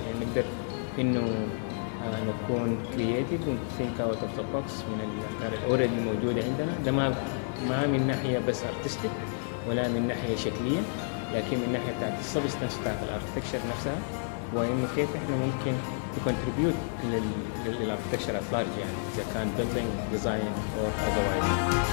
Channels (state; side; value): silent; right; 58 dB below the other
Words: يعني نقدر إنه نكون creative و think out of the box من الأفكار already الموجودة عندنا. ده ما من ناحية بس artistic ولا من ناحية شكلية، لكن من ناحية بتاعت السبستانس بتاعت الاركتكشر نفسها، وإنه كيف إحنا ممكن contribute للاركتكشر at large، يعني إذا كان building design or otherwise.